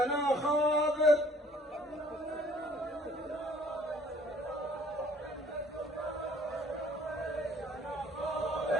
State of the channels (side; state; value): both; normal; correlation 0.57